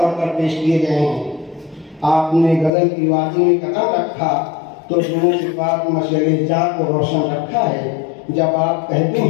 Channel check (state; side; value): drops out; right; at 2.7 s